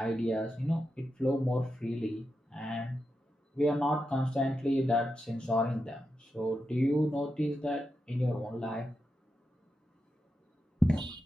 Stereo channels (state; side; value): normal; both; correlation 0.88